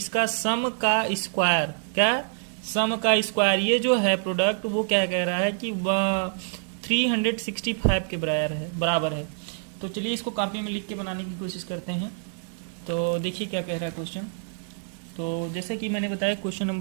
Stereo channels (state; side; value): silent; left; digital silence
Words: इसका सम का स्क्वायर। क्या? सम का स्क्वायर। ये जो है प्रोडक्ट, वो क्या कह रहा है कि 365 के बराबर है। तो चलिए इसको कॉपी में लिख के बनाने की कोशिश करते हैं। तो देखिए क्या कह रहा है क्वेश्चन। तो जैसे कि मैंने बताया क्वेश्चन